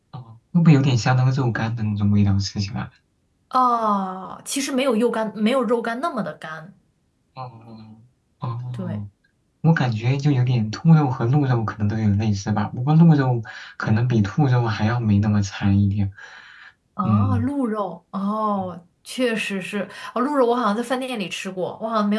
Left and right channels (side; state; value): both; identical; correlation 1.00